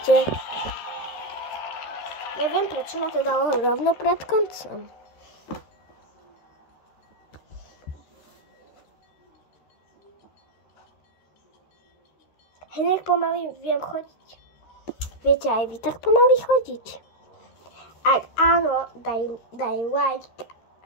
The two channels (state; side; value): late; right; 13 ms